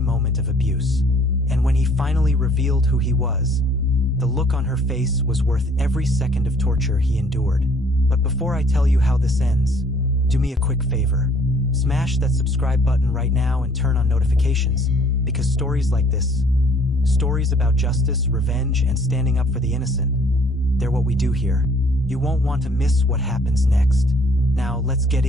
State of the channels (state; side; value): normal; both; correlation 0.59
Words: moment of abuse. And when he finally revealed who he was, the look on her face was worth every second of torture he endured. But before I tell you how this ends, do me a quick favor. Smash that subscribe button right now and turn on notifications, because stories like this, stories about justice, revenge, and standing up for the innocent, they're what we do here. You won't want to miss what happens next. Now, let's get